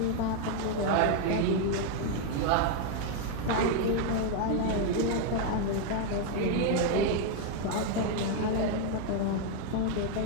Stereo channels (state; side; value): different; both; correlation 0.00